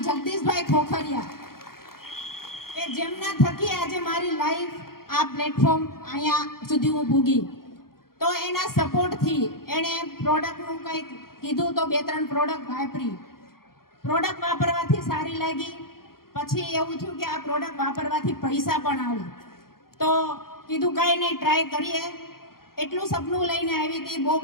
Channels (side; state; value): right; late; 0.93 ms